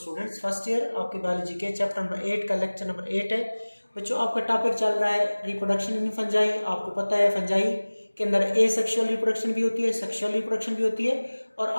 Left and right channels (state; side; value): inverted; both; correlation -1.00